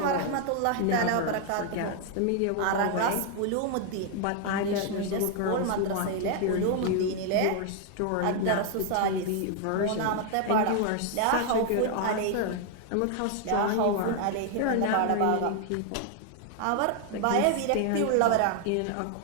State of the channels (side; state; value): both; different; correlation 0.00